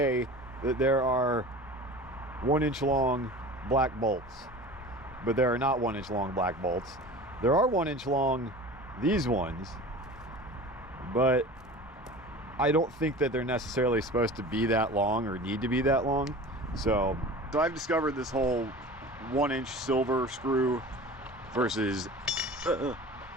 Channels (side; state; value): both; normal; correlation 0.37